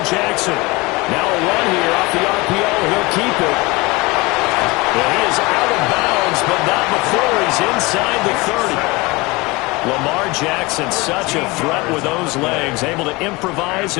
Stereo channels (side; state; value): right; quieter; 24.0 dB